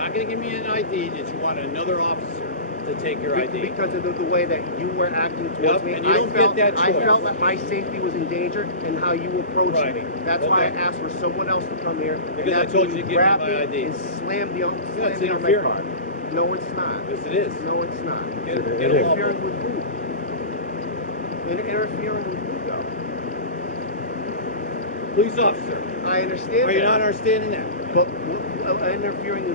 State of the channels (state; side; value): inverted; both; correlation -0.30